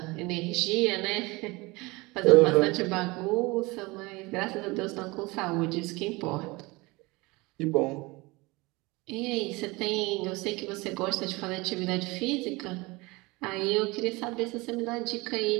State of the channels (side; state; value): left; quieter; 23.6 dB